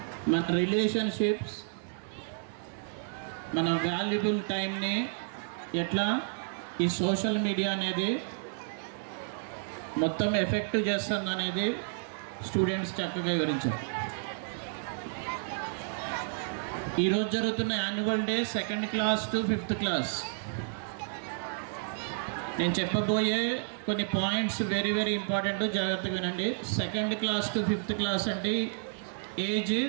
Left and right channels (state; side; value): silent; left; digital silence